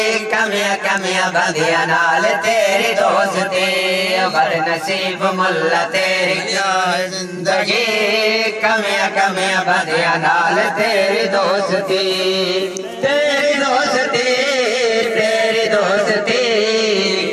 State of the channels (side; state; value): both; identical; correlation 1.00